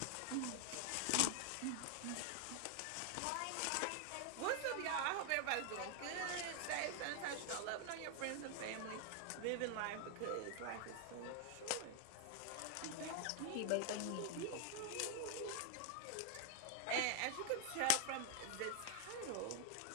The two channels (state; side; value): different; both; correlation 0.00